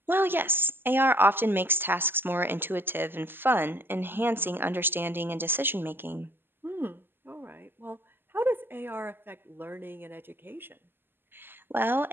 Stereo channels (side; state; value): left; late; 0.099 ms